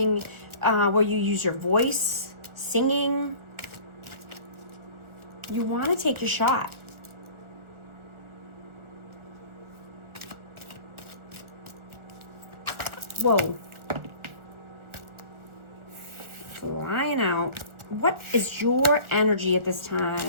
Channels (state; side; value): late; left; 1.4 ms